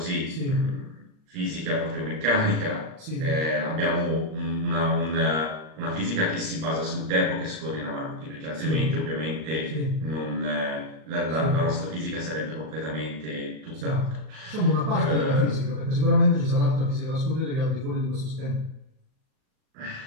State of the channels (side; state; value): left; late; 39 ms